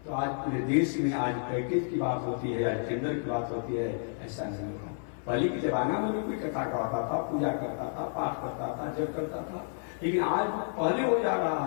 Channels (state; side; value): silent; right; 55 dB below the other